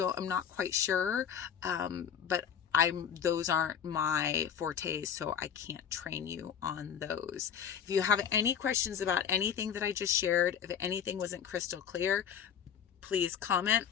not quite sure. But those aren't my fortes, so I can't train you on those. If you have any questions about anything that I just shared, if anything wasn't crystal clear, please comment.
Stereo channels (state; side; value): quieter; right; 8.3 dB